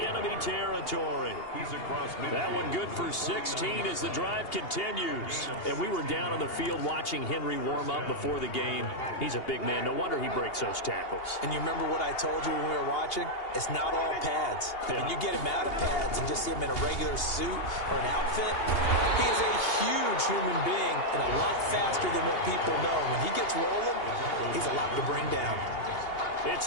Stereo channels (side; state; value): right; late; 2.8 ms